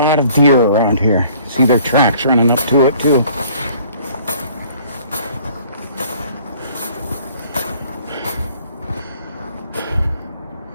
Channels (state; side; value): inverted; both; correlation -0.56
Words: of deer around here. See their tracks running up to it too.